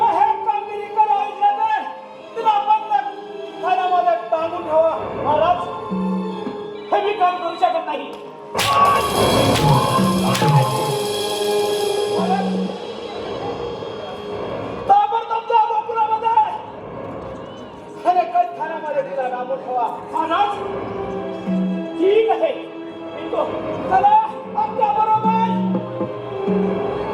हे कामगिरी करावी लागेल तिला बंद खाण्यामध्ये टांगून ठेवा महाराज हे मी काम करू शकत नाही ताबडतोब जा गोकुळामध्ये आणि कैद खाण्यामध्ये तिला टांगून ठेवा महाराज ठीक आहे येतो. चला आमच्या बरोबर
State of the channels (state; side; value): identical; both; correlation 1.00